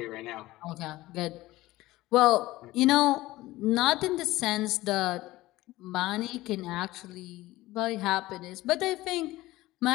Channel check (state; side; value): quieter; right; 17.9 dB